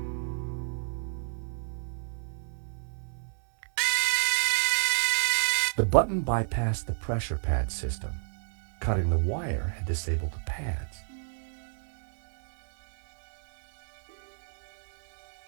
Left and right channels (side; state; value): left; silent; digital silence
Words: The button bypassed the pressure pad system. Cutting the wire had disabled the pads.